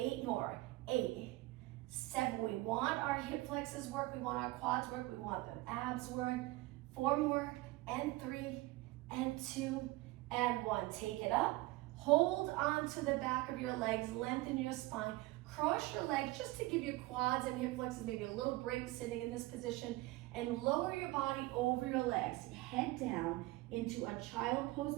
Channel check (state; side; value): quieter; left; 20.1 dB